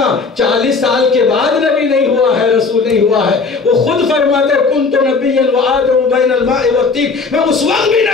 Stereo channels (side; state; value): right; quieter; 4.5 dB